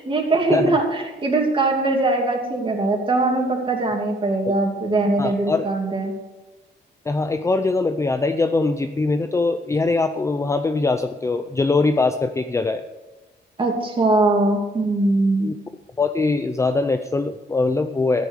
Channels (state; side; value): normal; both; correlation 0.67